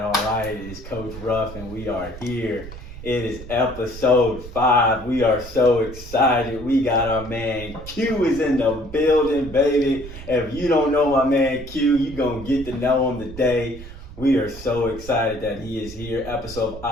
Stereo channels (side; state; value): right; noise; rumble, 14 dB below the sound